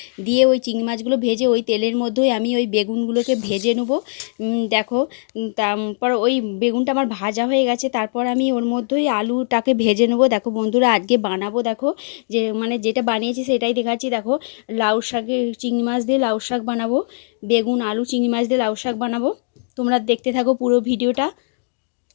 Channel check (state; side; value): silent; right; digital silence